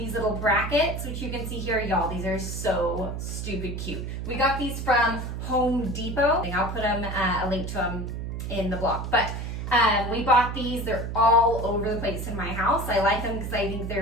little brackets, which you can see here, y'all. These are so stupid cute. We got these from Home Depot. I'll put them, a link to them in the blog, but we bought these. They're all over the place in my house. I like them because I think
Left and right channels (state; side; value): noise; right; hum, 5 dB below the sound